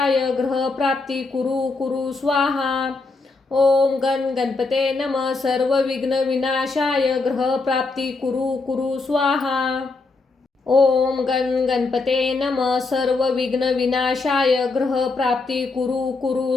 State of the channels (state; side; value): quieter; right; 3.7 dB